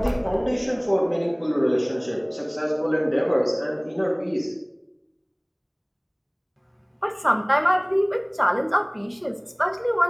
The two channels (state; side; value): identical; both; correlation 1.00